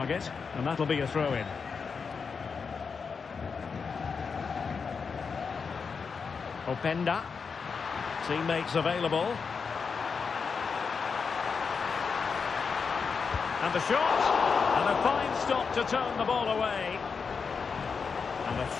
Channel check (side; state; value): right; quieter; 5.5 dB